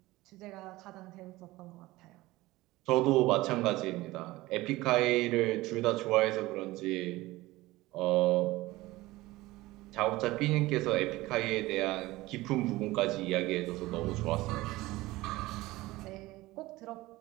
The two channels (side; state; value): left; quieter; 19.0 dB